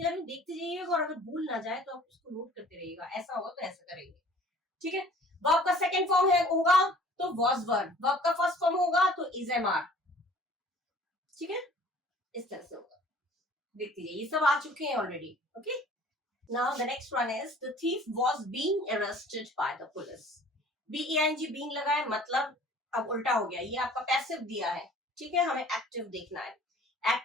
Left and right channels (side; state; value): both; normal; correlation 0.51